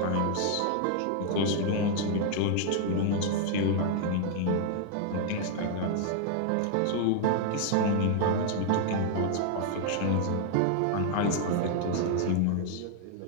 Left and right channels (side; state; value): both; different; correlation 0.00